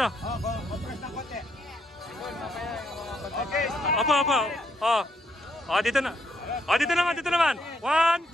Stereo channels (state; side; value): normal; both; correlation 0.73